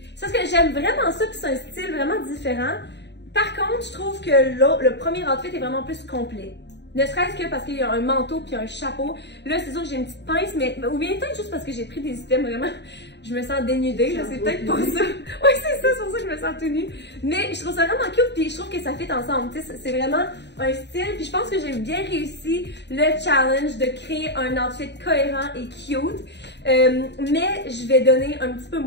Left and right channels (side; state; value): right; late; 0.50 ms